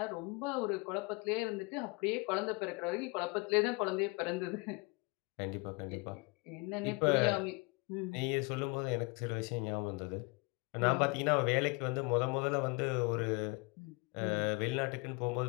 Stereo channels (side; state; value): right; quieter; 29.1 dB